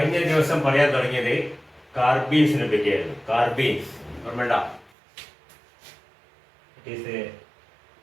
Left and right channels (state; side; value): drops out; left; at 4.9 s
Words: ദിവസം പറയാൻ തുടങ്ങിയത് കാർബീൻസിനെ പറ്റിയായിരുന്നു. കാർബീൻസ് ഓർമ്മണ്ട? It is